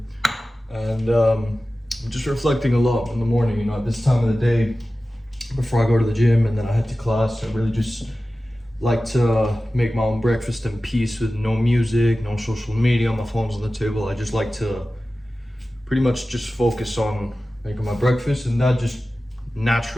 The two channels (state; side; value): normal; both; correlation 0.95